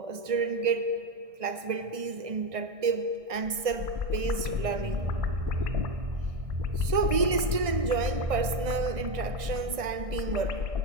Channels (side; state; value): left; late; 1.6 ms